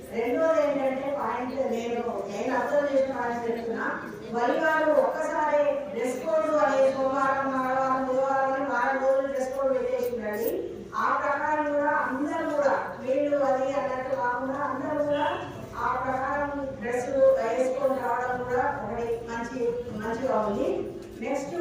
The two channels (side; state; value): both; identical; correlation 1.00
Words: రెండోది ఏంటంటే పాయింట్ నేను అబ్జర్వ్ చేసిన పాయింట్ చెప్తున్నా. వరివారు ఒక్కసారి డ్రెస్ కోడ్ అనే సోమవారం మంగళవారం బుధవారం అని 4 రోజులు డ్రెస్ కోడ్ పెట్టేసిందండి. ఆ ప్రకారం కూడా అందరూ కూడా వీళ్ళు అది అన్నట్టు కాకుండా అందరూ కూడా ఆ ప్రకారం డ్రెస్ వేసుకొని రావడం కూడా ఒకటి మంచిగా ఉంది. నెక్స్ట్